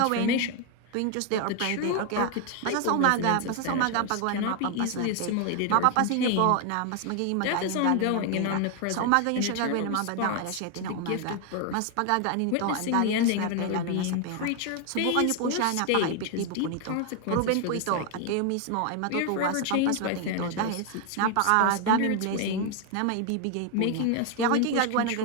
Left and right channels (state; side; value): different; both; correlation 0.01